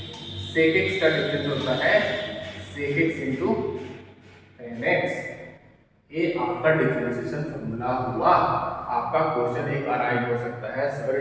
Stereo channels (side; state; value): both; identical; correlation 1.00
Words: sec x का डिफरेंस होता है sec x into tan x. ये आपका डिफरेंशिएशन फॉर्मूला हुआ। आपका क्वेश्चन एक अराइव हो सकता है,